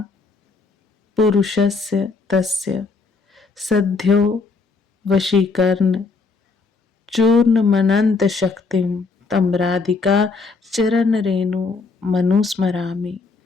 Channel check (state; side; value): quieter; right; 4.3 dB